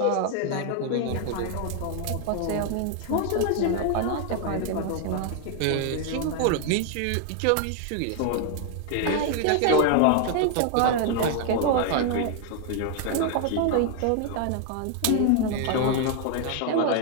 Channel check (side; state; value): both; different; correlation 0.00